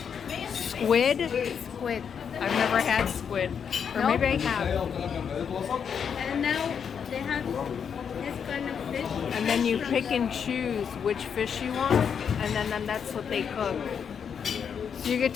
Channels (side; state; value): right; quieter; 7.2 dB